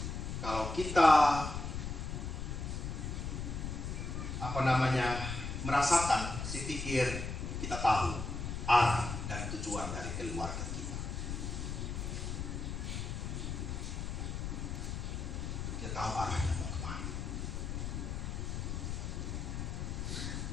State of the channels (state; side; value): noise; left; rumble, 4 dB below the sound